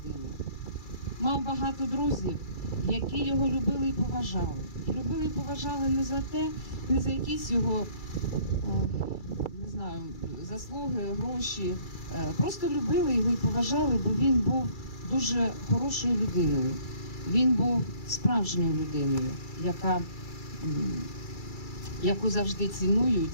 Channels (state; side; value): late; right; 2.3 ms